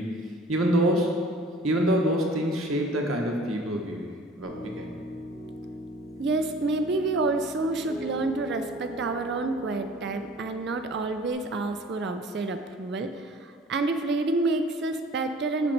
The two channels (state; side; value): normal; both; correlation 0.48